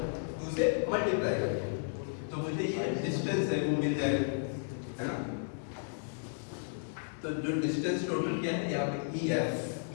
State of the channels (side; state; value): right; silent; digital silence